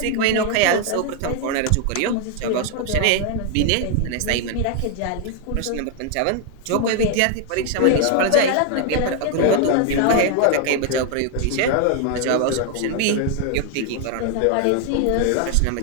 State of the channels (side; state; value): both; different; correlation 0.00